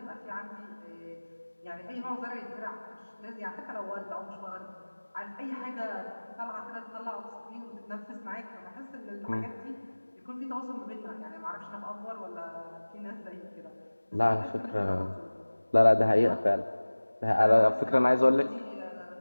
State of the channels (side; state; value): both; inverted; correlation -1.00